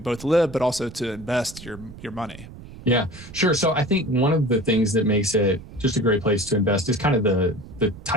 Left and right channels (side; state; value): right; noise; rumble, 16 dB below the sound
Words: live, but also to invest your money? Yeah, sure. So I think one of the things that makes it just a great place to invest is kind of the